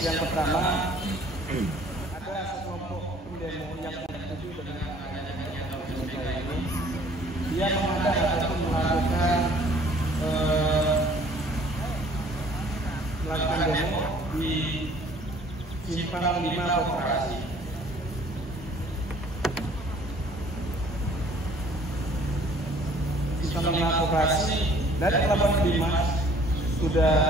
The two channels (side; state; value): both; normal; correlation 0.56